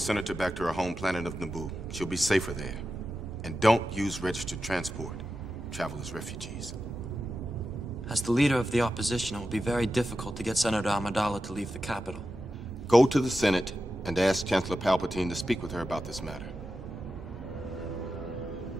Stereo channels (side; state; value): both; normal; correlation 0.91